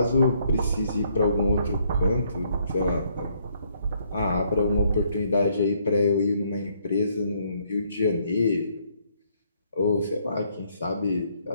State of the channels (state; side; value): inverted; both; correlation -0.69